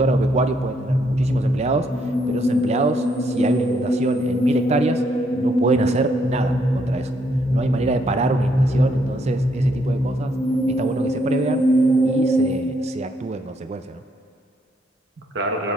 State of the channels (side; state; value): both; normal; correlation 0.72